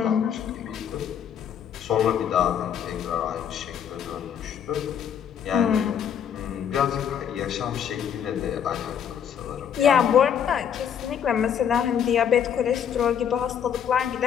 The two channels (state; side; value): quieter; right; 8.5 dB